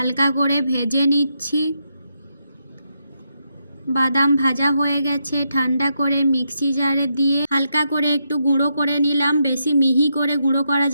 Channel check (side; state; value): both; inverted; correlation -0.82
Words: করে ভেজে নিচ্ছি। বাদাম ভাজা হয়ে গেছে, ঠান্ডা করে মিক্সি জারে দিয়ে হালকা করে একটু গুঁড়ো করে নিলাম। বেশি মিহি করে গুঁড়ো করা